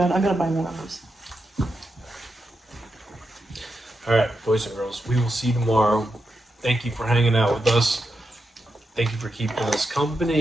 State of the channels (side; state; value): both; normal; correlation 0.86